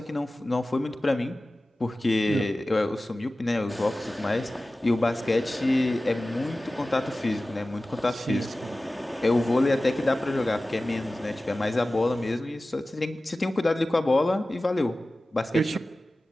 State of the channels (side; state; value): both; normal; correlation 0.96